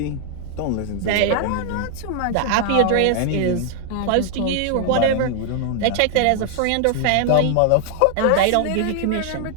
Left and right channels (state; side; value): different; both; correlation 0.00